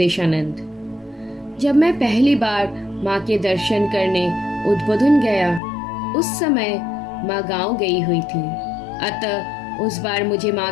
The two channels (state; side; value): drops out; right; at 5.6 s